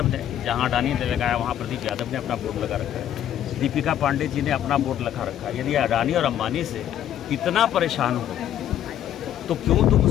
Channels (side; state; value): right; quieter; 10.9 dB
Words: ने, जहाँ अडानी ने लगाया वहाँ प्रदीप यादव ने अपना बोर्ड लगा रखा है। दीपिका पांडे जी ने अपना बोर्ड लगा रखा है। यदि अडानी और अंबानी से इतना परेशान हो तो क्यों तुम